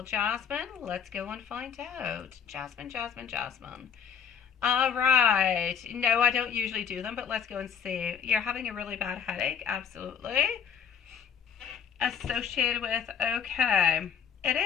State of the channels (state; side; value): quieter; right; 7.6 dB